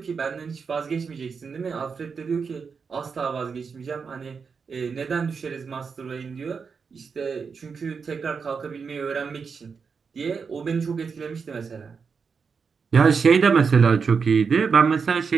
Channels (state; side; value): quieter; left; 5.6 dB